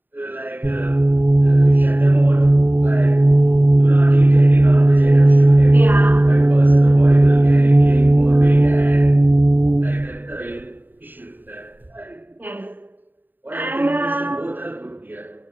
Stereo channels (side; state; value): left; late; 0.091 ms